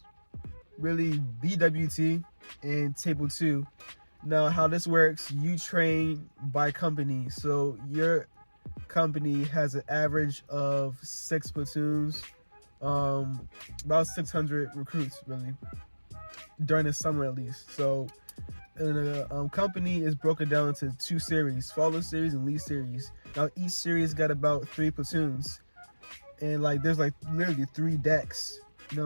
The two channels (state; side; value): inverted; both; correlation -1.00